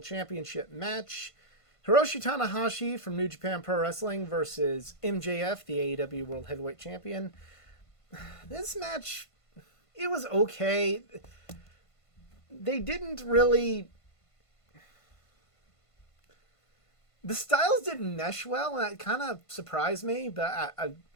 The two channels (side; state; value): right; late; 1.5 ms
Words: Championship match. Hiroshi Tanahashi from New Japan Pro Wrestling versus MJF, the AEW World Heavyweight Champion. This match, it was okay. They didn't really... The styles didn't mesh well, and that kind of surprised me, but